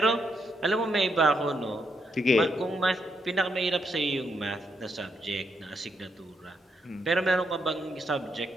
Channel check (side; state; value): both; normal; correlation 0.78